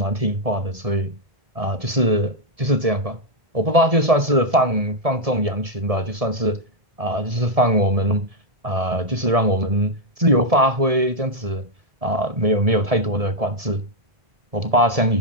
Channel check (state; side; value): late; left; 1.7 ms